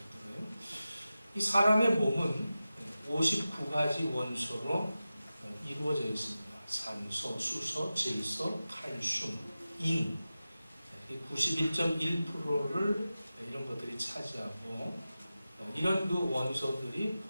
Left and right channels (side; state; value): both; inverted; correlation -0.94